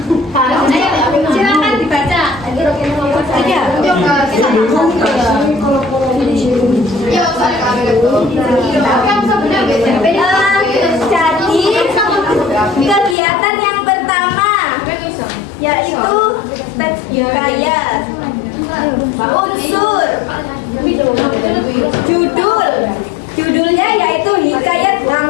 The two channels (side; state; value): right; drops out; at 13.2 s